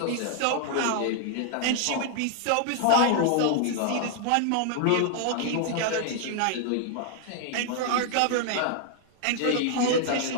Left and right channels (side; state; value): both; different; correlation 0.00